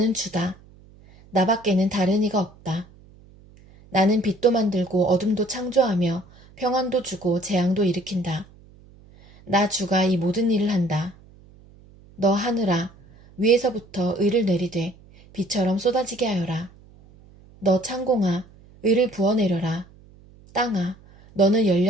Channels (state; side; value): noise; right; hum, 25 dB below the sound